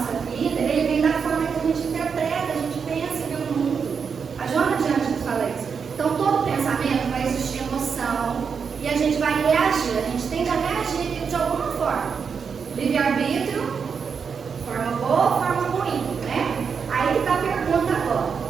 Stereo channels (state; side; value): quieter; left; 6.2 dB